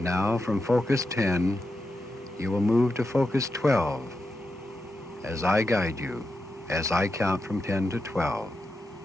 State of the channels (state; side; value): normal; both; correlation 0.88